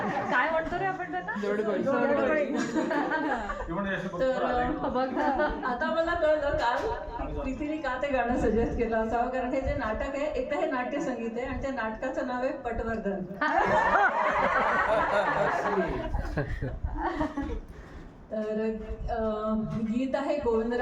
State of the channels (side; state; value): both; identical; correlation 1.00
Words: काय म्हणतो रे आपण त्यांना? तर आता मला कळलं काल प्रीतीने का ते गाणं सजेस्ट केलं असावं, कारण हे जे नाटक आहे एक तर हे नाट्य संगीत आहे आणि त्या नाटकाचं नाव आहे पटवर्धन. तर गीत आहे